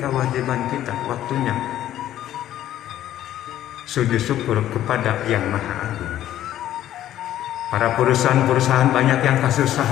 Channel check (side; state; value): right; quieter; 12.5 dB